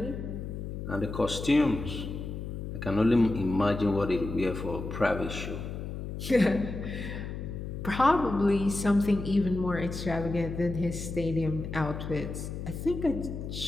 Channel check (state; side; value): noise; left; hum, 6 dB below the sound